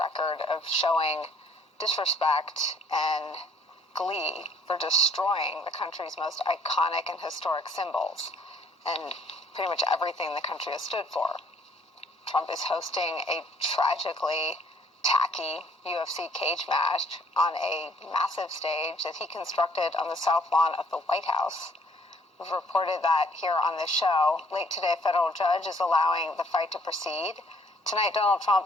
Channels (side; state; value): both; normal; correlation 0.61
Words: of showing disrespect and glee for destroying the country's most iconic and historic symbols and pretty much everything the country has stood for. Trump is hosting a tragically tacky UFC cage match on a massive stage that he constructed on the south lawn of the White House. We've reported that here on this show. Late today, a federal judge is allowing the fight to proceed. Tonight, Donald